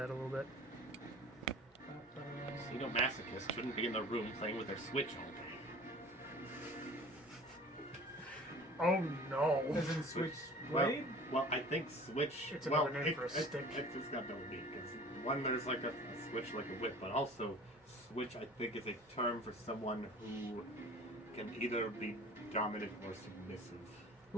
a little bit. Masochists shouldn't be in the room playing with their Switch all day. Oh no. As in Switchblade? Well, I think Switch. It's well, another name for a stick. It's got double meaning. Because one, there's like a switch like a whip, but also Switch, I think, is a term for someone who can either be dominant or submissive.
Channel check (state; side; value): normal; both; correlation 0.43